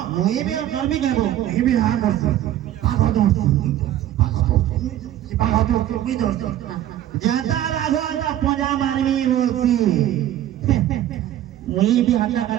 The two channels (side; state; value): left; quieter; 12.4 dB